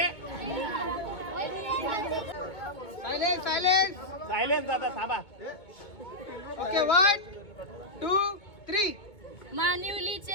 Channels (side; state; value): right; late; 2.2 ms